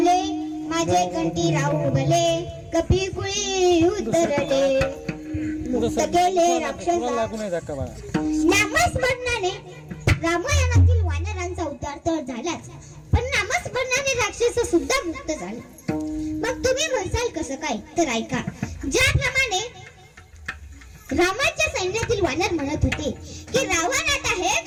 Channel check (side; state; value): both; identical; correlation 1.00